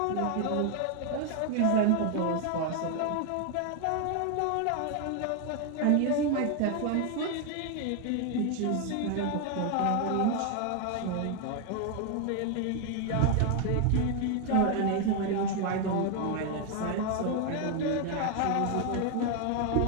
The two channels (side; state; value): both; different; correlation 0.01